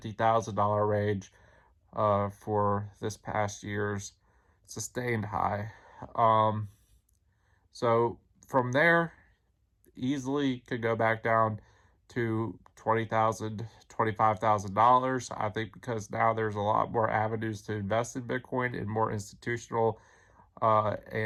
range for this past year's sustained high. So from there, easily could go back down to $20,000, $25,000. I think because now there's a lot more avenues to invest in Bitcoin and more institutional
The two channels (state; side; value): identical; both; correlation 1.00